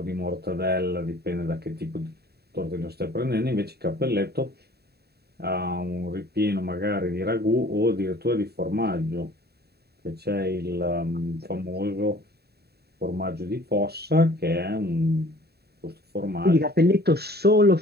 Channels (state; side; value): late; left; 0.47 ms